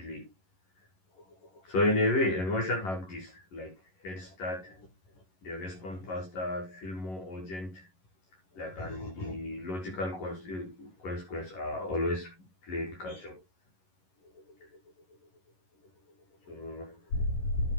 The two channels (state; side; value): late; right; 11 ms